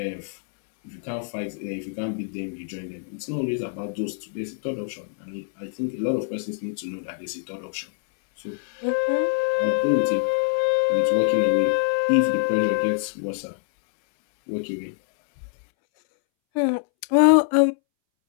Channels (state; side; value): silent; right; 62 dB below the other